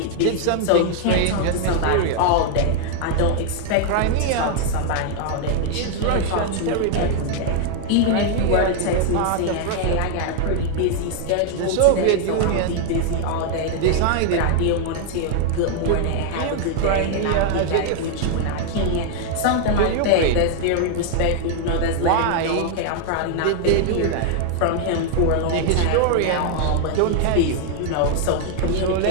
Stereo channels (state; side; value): different; both; correlation 0.00